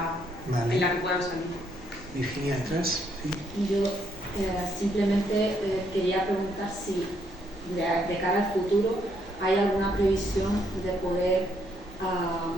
en la que puedan salir. Virginia, atrás. Sí. Yo simplemente quería preguntar si de cara al futuro hay alguna previsión de poder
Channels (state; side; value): normal; both; correlation 0.72